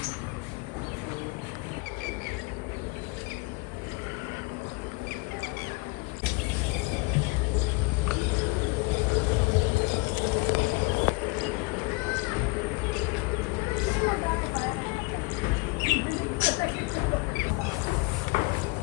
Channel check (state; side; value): quieter; right; 26.2 dB